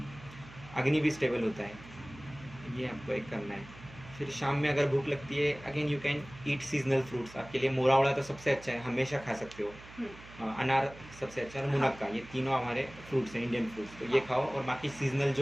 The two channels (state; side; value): noise; right; hum, 18 dB below the sound